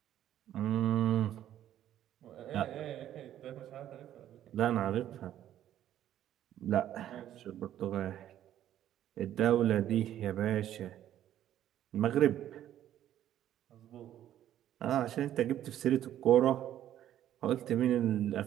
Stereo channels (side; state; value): left; quieter; 11.6 dB